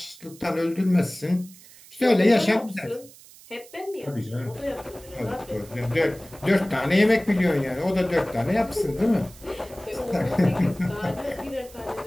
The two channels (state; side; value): noise; right; hiss, 22 dB below the sound